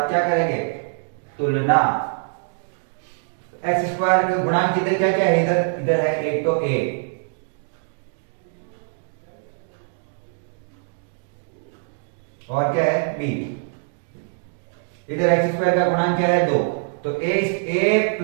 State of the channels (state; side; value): silent; left; digital silence